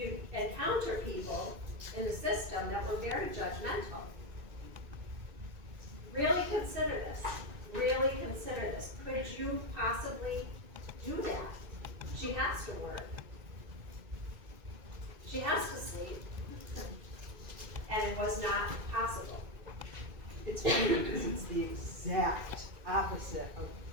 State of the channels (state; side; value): late; left; 2.2 ms